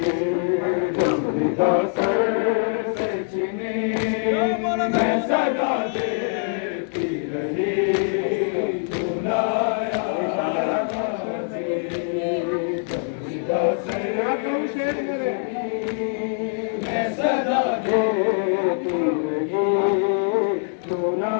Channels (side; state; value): right; silent; 63 dB below the other